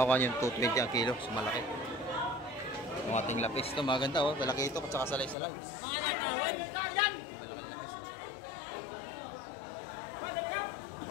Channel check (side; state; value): right; drops out; at 5.4 s